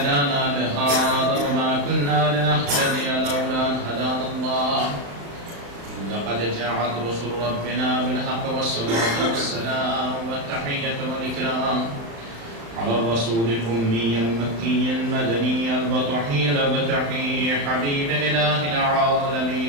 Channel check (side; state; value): left; late; 35 ms